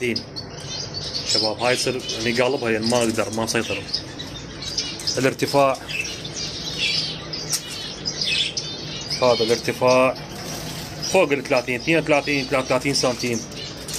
شباب. هاي يصير يعني قالبها يعني ما اقدر ما اسيطر. الارتفاع هذا الارتفاع فوق ال 30 32 33 سنتيم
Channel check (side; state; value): both; identical; correlation 1.00